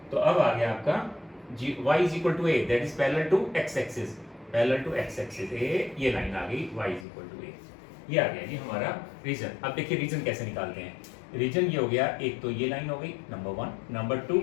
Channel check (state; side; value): drops out; right; at 7.1 s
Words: तो अब आ गया आपका y is equal to a, that is parallel to x axis, a, ये लाइन आ गई y is equal to a। ये आ गया जी हमारा रीजन। अब देखिए रीजन कैसे निकालते हैं। रीजन ये हो गया, एक तो ये लाइन हो गई नंबर 1, नंबर 2